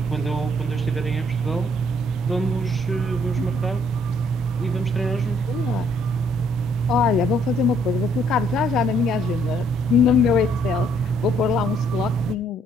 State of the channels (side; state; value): both; normal; correlation 0.66